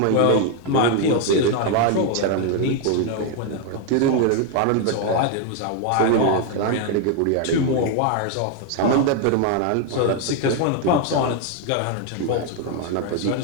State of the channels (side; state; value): both; different; correlation 0.01